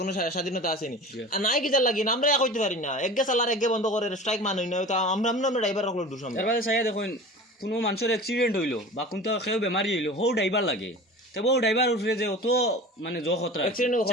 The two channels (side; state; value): both; normal; correlation 0.37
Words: কোনো স্বাধীনতা আসেনি আর নাই কিতা লাগি না আমরা কইতে পারি না একগে চালার একগে বন্ধ করে স্ট্রাইক মানুষ না তো আমরা ড্রাইভার রাখলো দোষ আমরা এরপরে চাইয়া দেখুন কোনো মানুষের অ্যাক্সিডেন্ট হইলো বা কোনটা কেউ বেমারি হইলো হো ড্রাইভার লাগে তবে ও ড্রাইভার উঠলে যে অত মানে জ খতরা অ্যাক্সিডেন্ট হল